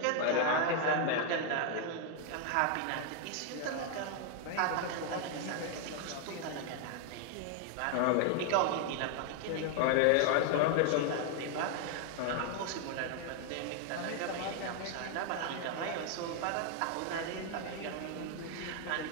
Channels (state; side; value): different; both; correlation 0.00